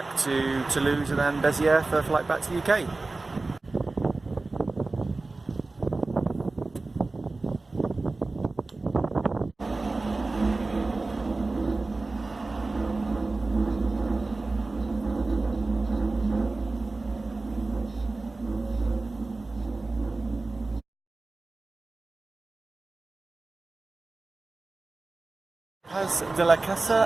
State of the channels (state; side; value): quieter; left; 3.4 dB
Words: to Toulouse and then Béziers for a flight back to the UK. Hospital de